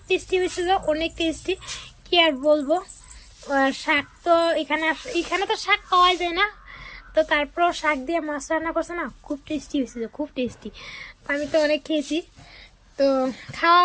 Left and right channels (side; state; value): both; identical; correlation 1.00